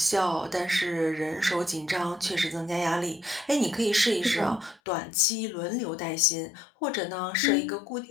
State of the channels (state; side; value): drops out; right; at 4.8 s